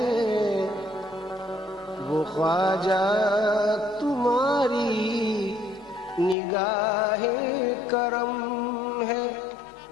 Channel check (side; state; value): right; drops out; at 6.4 s